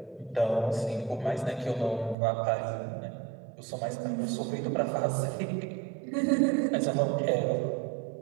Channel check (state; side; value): drops out; left; at 2.1 s